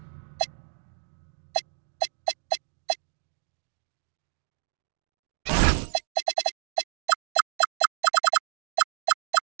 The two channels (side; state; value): left; silent; 57 dB below the other